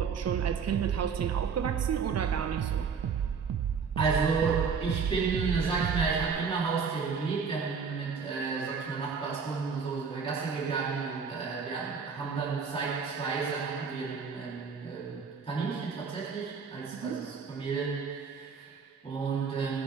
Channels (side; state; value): left; quieter; 5.8 dB